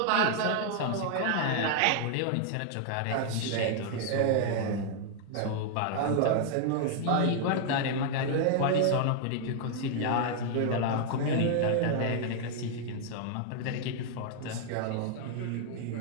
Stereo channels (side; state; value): both; different; correlation 0.00